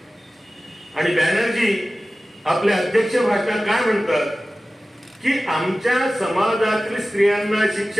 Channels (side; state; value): both; normal; correlation 0.96